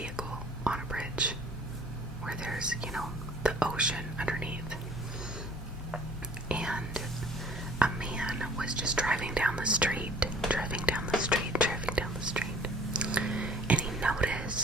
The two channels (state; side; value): noise; left; hum, 13 dB below the sound